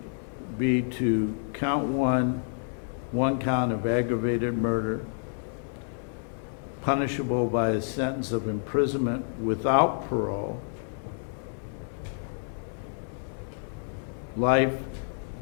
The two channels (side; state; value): right; silent; digital silence